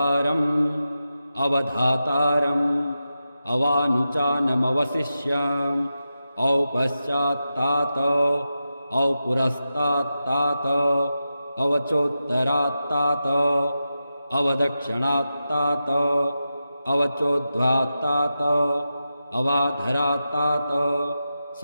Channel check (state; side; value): inverted; both; correlation -0.90